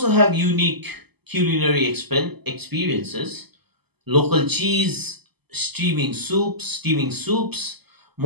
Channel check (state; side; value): late; left; 0.97 ms